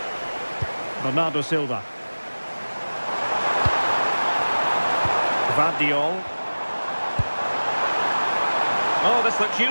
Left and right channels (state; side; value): inverted; both; correlation -1.00